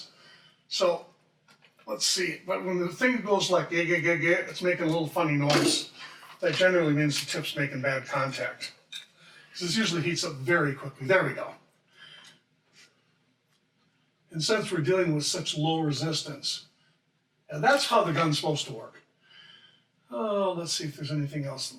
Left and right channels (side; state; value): both; identical; correlation 1.00